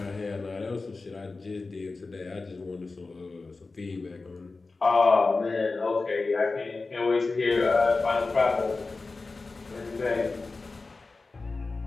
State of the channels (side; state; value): right; quieter; 3.8 dB